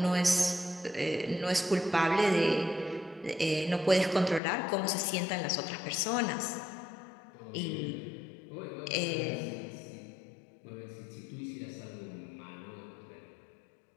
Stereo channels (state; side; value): drops out; right; at 4.4 s